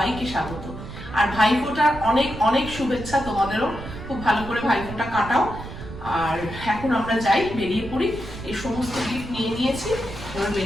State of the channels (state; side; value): noise; right; rumble, 11 dB below the sound